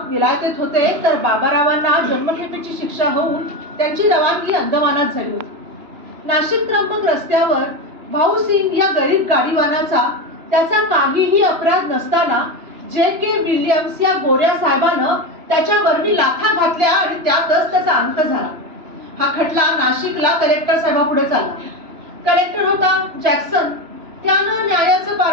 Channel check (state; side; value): late; left; 3.0 ms